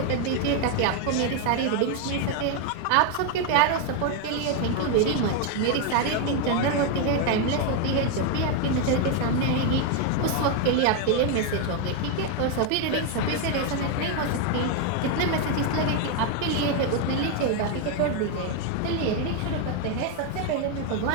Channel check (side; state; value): both; different; correlation 0.01